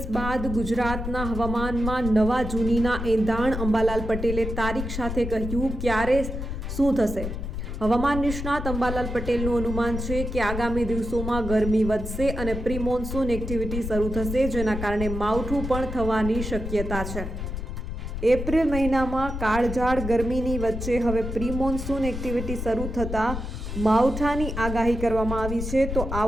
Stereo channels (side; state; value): left; noise; rumble, 5 dB below the sound